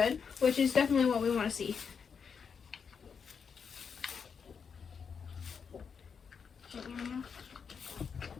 which is definitely what we want to see. It's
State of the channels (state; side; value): quieter; right; 6.3 dB